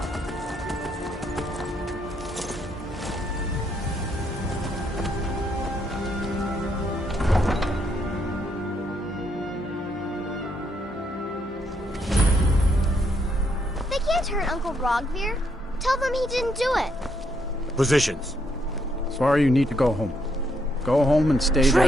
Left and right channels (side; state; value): both; normal; correlation 0.75